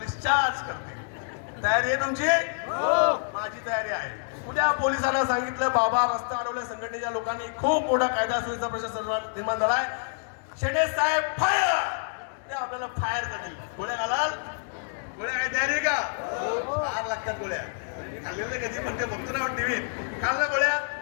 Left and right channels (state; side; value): silent; right; digital silence